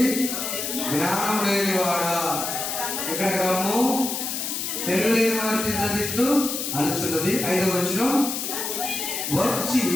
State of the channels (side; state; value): left; noise; hiss, 3 dB below the sound